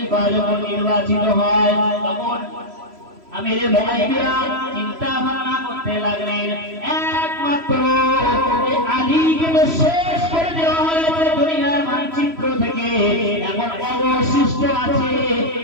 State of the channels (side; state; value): left; late; 3.0 ms